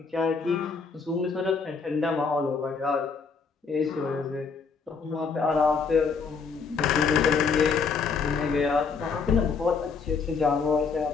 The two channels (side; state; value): right; quieter; 5.2 dB